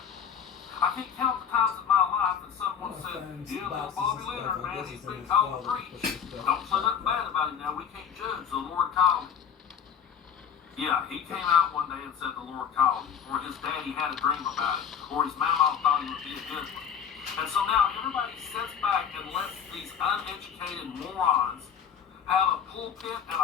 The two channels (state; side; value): quieter; right; 7.8 dB